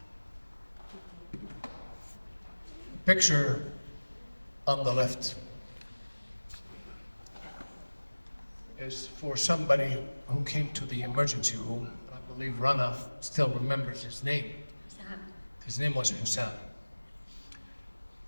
Picture on the left is for somebody who came to the emergency room. I believe Rana still remembers his name. His name was Husam.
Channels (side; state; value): both; inverted; correlation -1.00